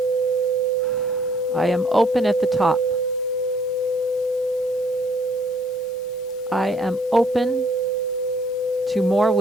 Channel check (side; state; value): both; normal; correlation 0.62